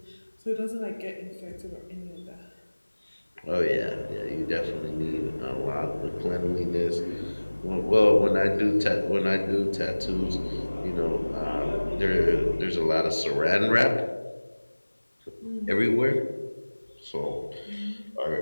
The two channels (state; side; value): inverted; both; correlation -1.00